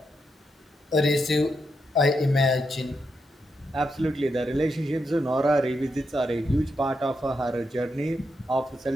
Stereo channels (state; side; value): normal; both; correlation 0.83